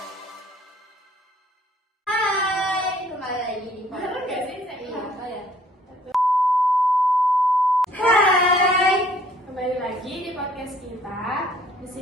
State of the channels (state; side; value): normal; both; correlation 0.59